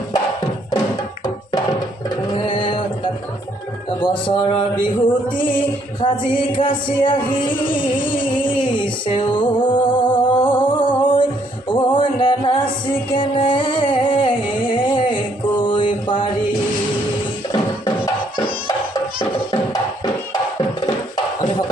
বছৰৰ বিহুতি সাজি কাচি আহিছে ঐ নাচি কেনে কৈ পাৰি আমি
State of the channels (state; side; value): normal; both; correlation 0.68